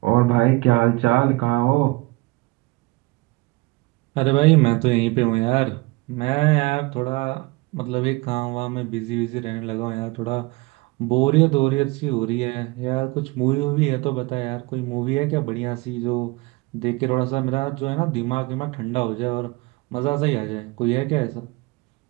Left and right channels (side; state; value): left; quieter; 23.4 dB